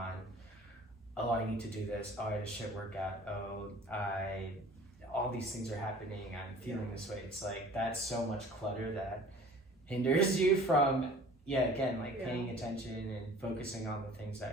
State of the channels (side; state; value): both; normal; correlation 0.47